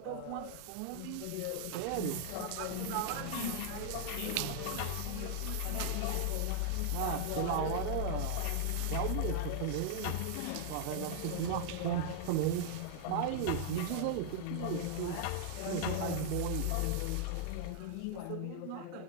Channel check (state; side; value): different; both; correlation -0.01